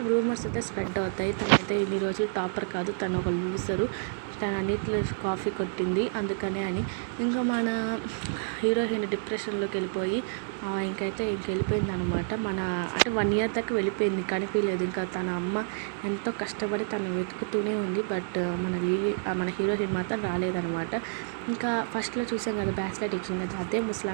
రూమర్స్ అయితే స్ప్రెడ్ అవుతాయి. తనైతే ఇన్ని రోజులు టాపర్ కాదు, తను ఒక లూజరు, తను అన్నిట్లో కాఫీ కొట్టింది అందుకనే అని. ఇంకా మన హీరోయిన్ డిప్రెషన్లోకి వెళ్ళిపోయి ఇంకైతే వెళ్ళిపోయింది అనమాట. అంటే 1 year దాకా వెళ్ళిపోయింది, కనిపించలేదు. ఇంకా తన అమ్మ ఎంతో కష్టపడి తను వెతుకుతూనే ఉంది. బట్ మన హీరోయిన్ మాత్రం రాలేదనమాట. ఇంకా ఫస్ట్లో చూసాం కదా బ్రాస్లెట్ ఇచ్చింది, అదే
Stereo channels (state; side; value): silent; left; digital silence